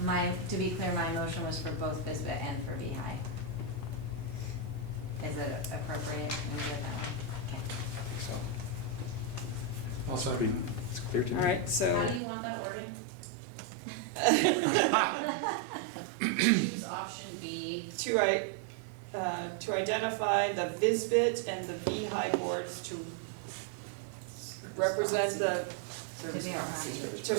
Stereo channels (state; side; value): drops out; left; at 12.2 s